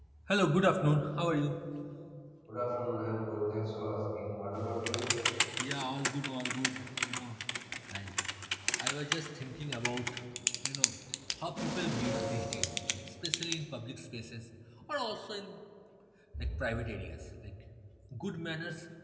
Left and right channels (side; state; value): both; identical; correlation 1.00